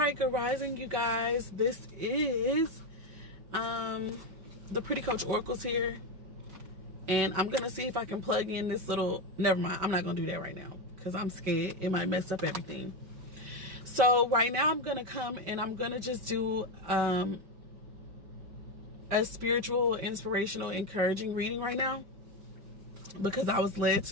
good rising, you guys. This is the Pretty Coach Oracles here, and I'm gonna see if I can plug in this little, never mind, I'm not gonna do that right now because I'm scared it might mess up everything. So right now I'm gonna come and I'm gonna just do a spiritual, inspirational, encouraging reading right now because I was led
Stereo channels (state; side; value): late; left; 5.3 ms